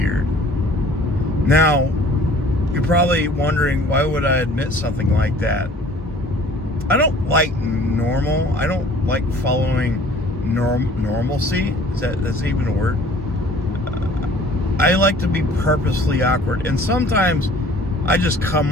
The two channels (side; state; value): both; normal; correlation 0.51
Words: Now, you're probably wondering, why would I admit something like that? I don't like normal. I don't like following normalcy. That's even a word? I like to be purposely awkward. And sometimes I just